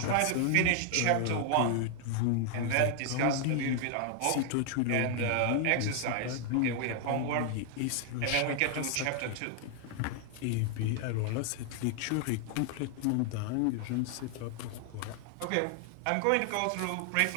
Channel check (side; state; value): both; different; correlation 0.00